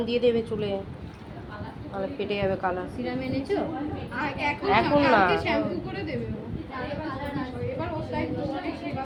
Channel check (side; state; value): both; identical; correlation 1.00